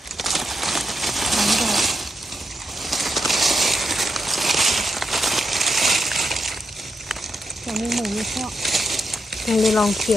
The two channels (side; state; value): both; normal; correlation 0.83